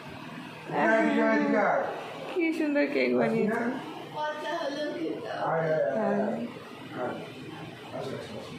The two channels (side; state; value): both; identical; correlation 1.00